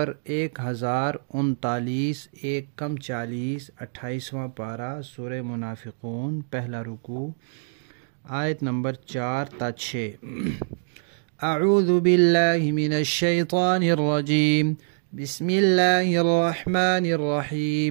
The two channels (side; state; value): left; silent; digital silence